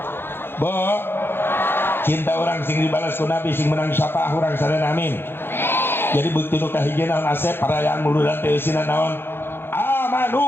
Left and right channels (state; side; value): late; right; 0.10 ms